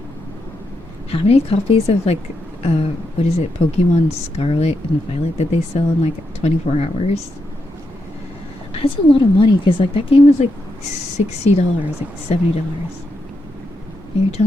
how many copies of like what is it, Pokemon Scarlet and Violet did they sell in like 24 hours? That's a lot of money because like that game was like $60, like $70. And you're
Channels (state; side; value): normal; both; correlation 0.83